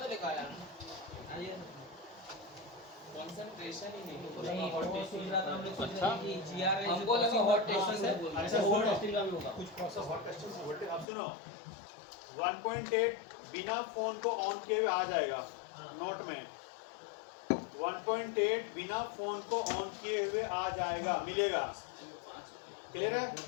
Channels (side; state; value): right; drops out; at 11.1 s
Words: लिखाया। कंसंट्रेशन ही नहीं। वो सुन रहा था, हम लोग सोच अच्छा। रहे थे कि जीआर है हमको लगा hot testing से बोल रहे अच्छा, अच्छा सुनो। हॉट टेस्टिंग का भी होगा। कुछ प्रोसेस हॉट टेस्टिंग से वोल्टेज, अब सुनो 1.8 बिना फोन को ऑन किए हुए आ जाएगा नोट में। 1.8 बिना फोन को ऑन किए हुए आ जाएगा, मिलेगा। क्लियर है।